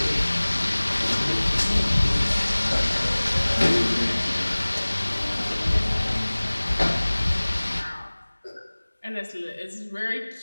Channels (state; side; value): inverted; both; correlation -1.00